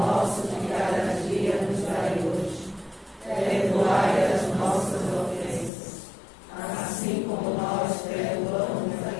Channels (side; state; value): right; drops out; at 5.7 s